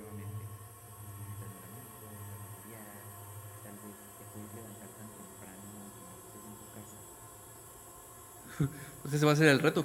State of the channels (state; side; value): identical; both; correlation 1.00